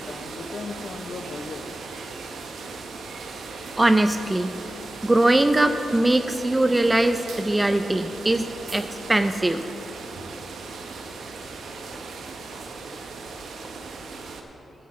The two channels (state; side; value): normal; both; correlation 0.96